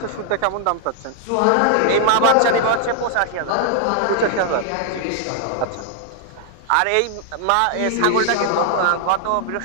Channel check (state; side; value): different; both; correlation 0.00